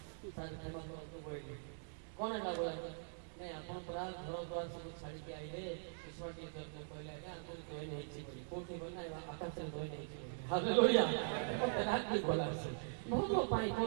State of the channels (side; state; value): left; silent; digital silence